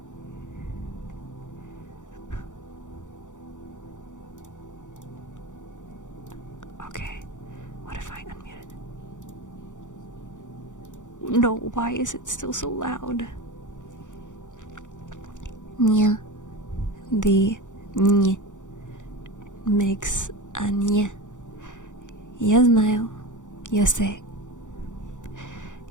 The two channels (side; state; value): right; late; 0.86 ms